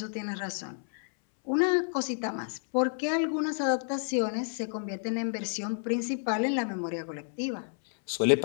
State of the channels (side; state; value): right; silent; 58 dB below the other